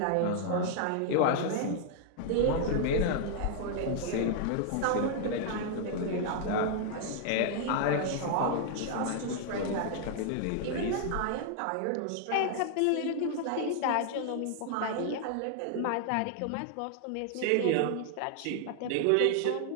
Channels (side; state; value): both; different; correlation 0.00